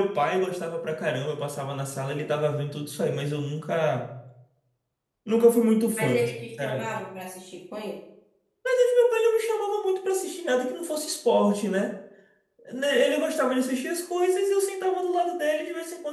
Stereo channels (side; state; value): both; identical; correlation 1.00